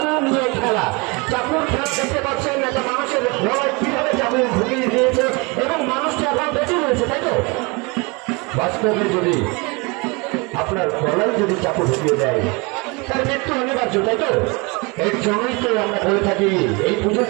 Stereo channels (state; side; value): quieter; left; 28.1 dB